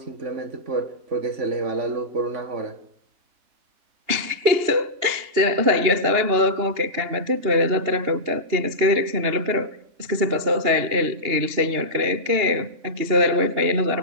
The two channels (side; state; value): left; late; 2.9 ms